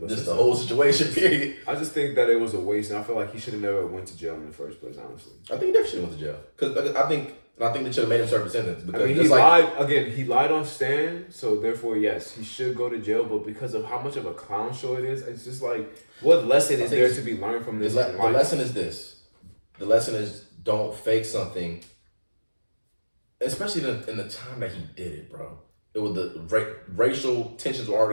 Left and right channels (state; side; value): inverted; both; correlation -1.00